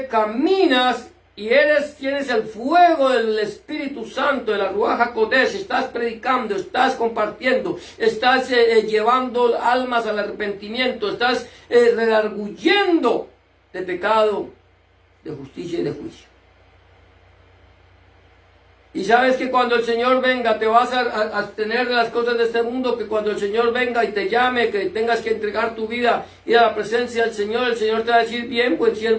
caminas y tienes el fuego del Espíritu Santo, de la Ruach HaKodesh, estás predicando, estás compartiendo, estás llevando almas al arrepentimiento, estás redarguyendo de pecado, de justicia y de juicio. Y sabes que cuando el Señor venga te vas a abstener de las cosas de este mundo, que cuando el Señor venga y te llame, que tengas que entregar tu vida, ir a la presencia del Señor, el Señor te va a decir, bien, buen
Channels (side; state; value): both; identical; correlation 1.00